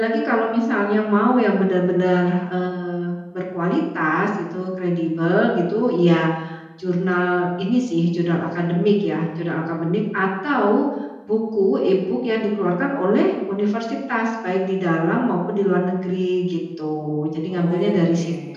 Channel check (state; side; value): identical; both; correlation 1.00